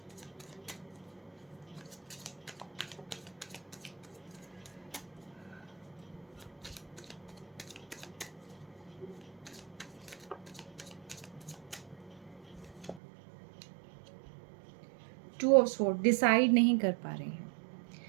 टू ऑफ स्वॉर्ड, डिसाइड नहीं कर पा रहे हैं,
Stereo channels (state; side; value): drops out; left; at 13.0 s